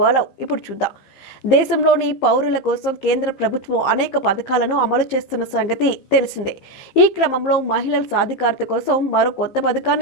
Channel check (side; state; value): right; late; 15 ms